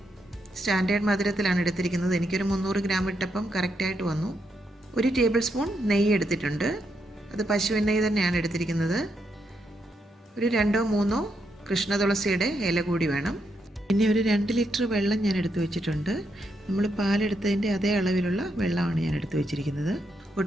സ്റ്റാൻഡേർഡ് മധുരത്തിലാണ് എടുത്തിരിക്കുന്നത്. എനിക്കൊരു 300 ഗ്രാം ഇട്ടപ്പം കറക്റ്റായിട്ട് വന്നു. 1 ടേബിൾ സ്പൂൺ നെയ്യ് എടുത്തിട്ടുണ്ട്. അത് പശുവിൻ നെയ്യ് തന്നെയാണ് എടുത്തിരിക്കുന്നത്. ഒരു 2-3 കൃഷ്ണ തുളസിയുടെ ഇല കൂടി വേണം. പിന്നെ ഒരു 2 ലിറ്റർ വെള്ളം ഞാൻ എടുത്തു വെച്ചിട്ടുണ്ട്. നമ്മൾ പാലെടുത്തതിൻ്റെ അതേ അളവിലുള്ള വെള്ളമാണ് ഞാൻ എടുത്തു വെച്ചിരിക്കുന്നത്.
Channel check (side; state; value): both; normal; correlation 0.80